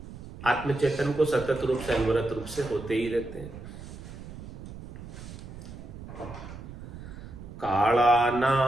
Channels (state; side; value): noise; right; rumble, 13 dB below the sound